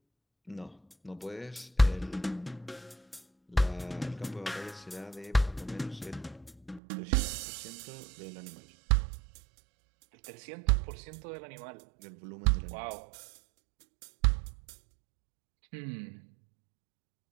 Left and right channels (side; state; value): left; drops out; at 6.8 s